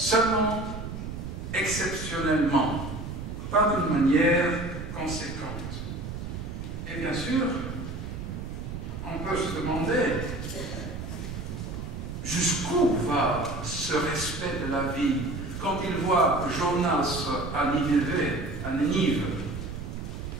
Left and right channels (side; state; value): right; noise; rumble, 7 dB below the sound